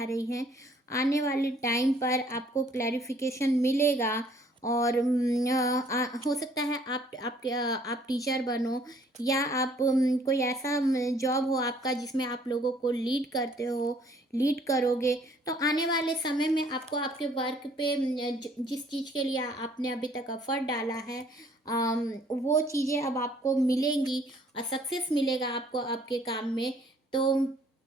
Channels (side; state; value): both; normal; correlation 0.60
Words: रही हैं। आने वाले टाइम पर आपको क्लैरिफिकेशन मिलेगा। और हो सकता है आप टीचर बनो या आप कोई ऐसा जॉब हो आपका जिसमें आप लोगों को लीड करते हो, लीड करोगे। तो आने वाले समय में आपको आपके वर्क पे जिस चीज़ के लिए आपने अभी तक एफर्ट डाला है, वो चीज़ें अब आपको मिलेंगी और सक्सेस मिलेगा आपको आपके काम में। तो